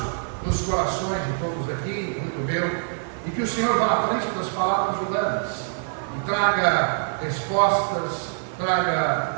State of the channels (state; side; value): silent; left; 62 dB below the other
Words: nos corações de todos aqui, muito meu, e que o Senhor vá à frente das palavras humanas e traga respostas,